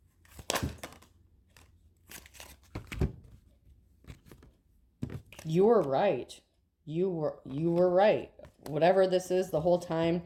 You were right. You were right. Whatever this is the whole time,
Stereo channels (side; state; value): both; identical; correlation 1.00